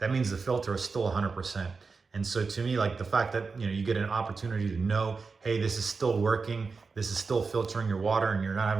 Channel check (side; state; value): left; quieter; 4.7 dB